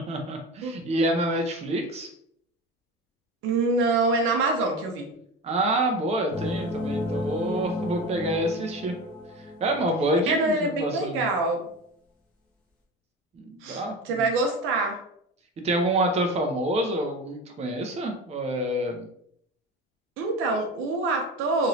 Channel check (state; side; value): normal; both; correlation 0.28